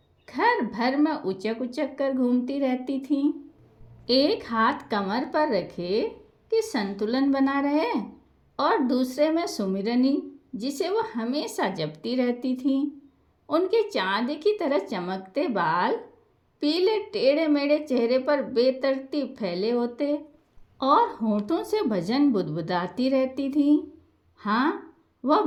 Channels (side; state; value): both; identical; correlation 1.00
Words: घर भर में उचक उचक कर घूमती रहती थी, एक हाथ कमर पर रखे कि संतुलन बना रहे और दूसरे में सुमिरनी जिसे वह हमेशा जपती रहती थी। उनके चांदी की तरह चमकते बाल पीले टेढ़े मेढ़े चेहरे पर बेतरतीब फैले होते और होठों से भजन बुदबुदाती रहती थी। हाँ, वह